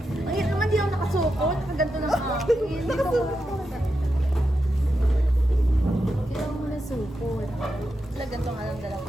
Ay, naman di ako nakasukot. Nakaganto ng akin. Hindi ko kailangan mo na sukot. Sila ganito nga lang dala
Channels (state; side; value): normal; both; correlation 0.87